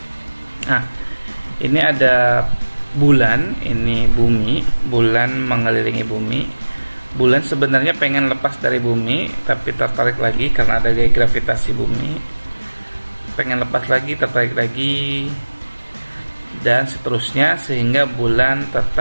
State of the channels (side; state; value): both; inverted; correlation -1.00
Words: Nah, ini ada bulan, ini bumi, bulan mengelilingi bumi. Bulan sebenarnya pengen lepas dari bumi, tapi tertarik lagi karena ada gaya gravitasi bumi. Pengen lepas lagi, tertarik lagi, dan seterusnya, sehingga bulan